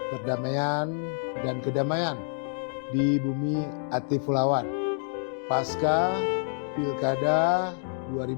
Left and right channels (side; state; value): right; silent; digital silence